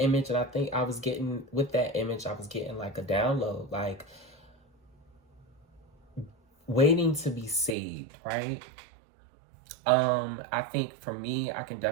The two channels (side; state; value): left; drops out; at 7.8 s